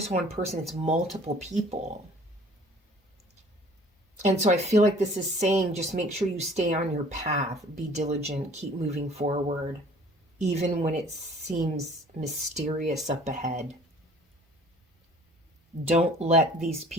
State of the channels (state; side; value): normal; both; correlation 0.52